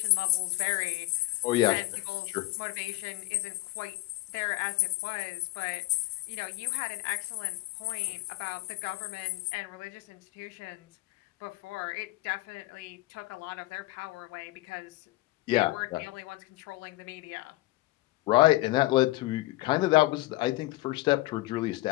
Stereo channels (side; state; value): right; quieter; 19.1 dB